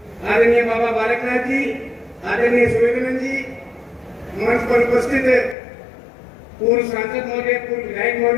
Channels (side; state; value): right; drops out; at 5.6 s